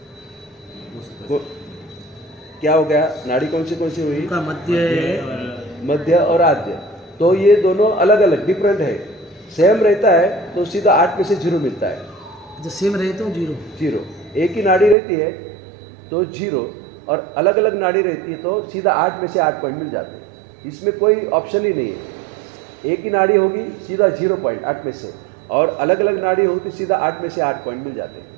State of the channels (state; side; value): drops out; left; at 15.0 s